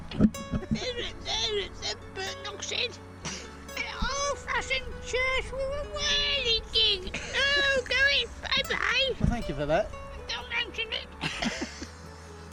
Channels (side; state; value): both; identical; correlation 1.00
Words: there's a burnt oxide. An old-fashioned church with a whirly gig. Oh, going bye-bye. Well, thank you for that. Don't mention it.